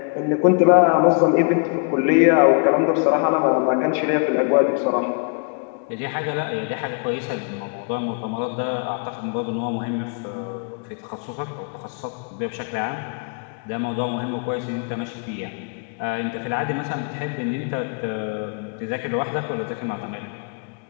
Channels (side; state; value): right; quieter; 38.2 dB